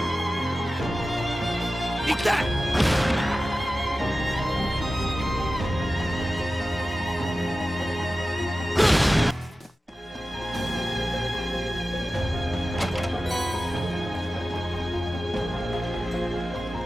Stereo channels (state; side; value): normal; both; correlation 0.94